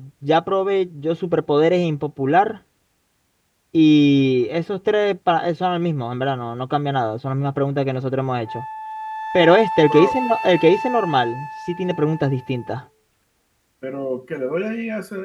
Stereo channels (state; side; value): identical; both; correlation 1.00